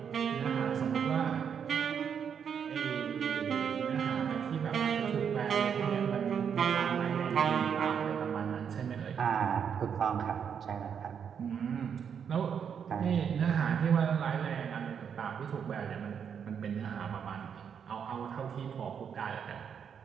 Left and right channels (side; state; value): left; quieter; 7.5 dB